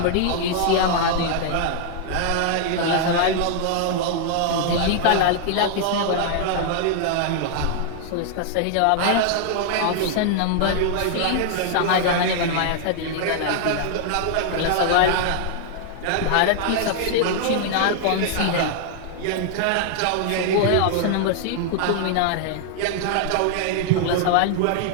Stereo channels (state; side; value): different; both; correlation 0.00